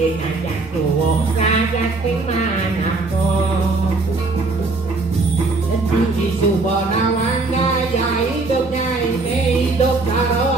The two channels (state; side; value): quieter; left; 3.6 dB